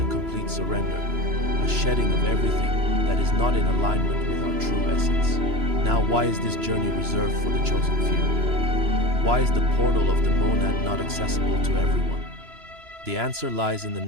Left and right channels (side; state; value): left; late; 3.0 ms